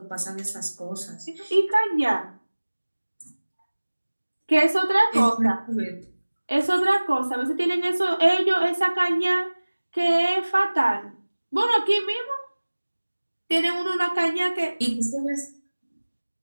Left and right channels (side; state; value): both; inverted; correlation -1.00